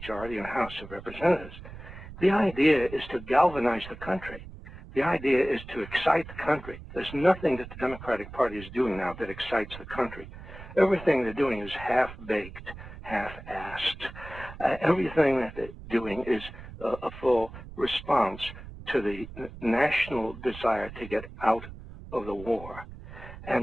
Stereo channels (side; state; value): right; noise; rumble, 14 dB below the sound